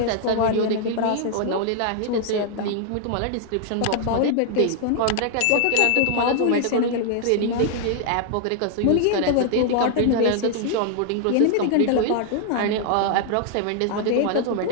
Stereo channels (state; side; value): different; both; correlation 0.00